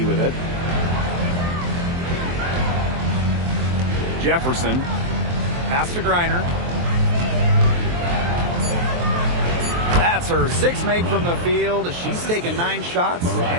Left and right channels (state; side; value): late; left; 23 ms